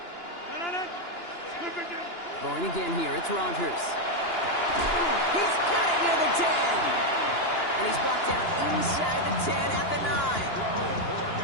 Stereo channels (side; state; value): right; late; 2.9 ms